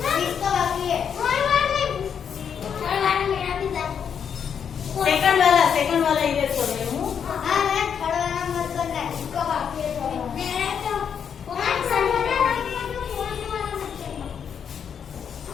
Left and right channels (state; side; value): quieter; right; 7.6 dB